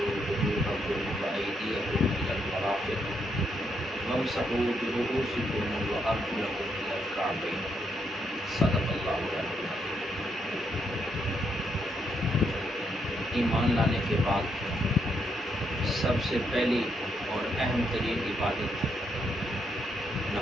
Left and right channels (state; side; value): normal; both; correlation 0.77